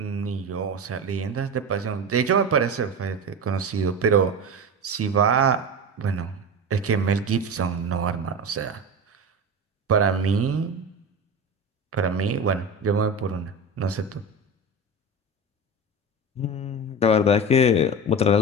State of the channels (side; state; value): both; normal; correlation 0.25